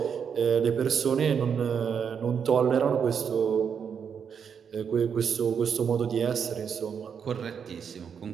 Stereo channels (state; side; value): quieter; left; 7.1 dB